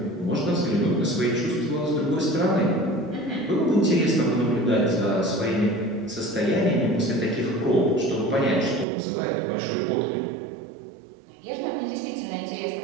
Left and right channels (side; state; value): left; drops out; at 8.8 s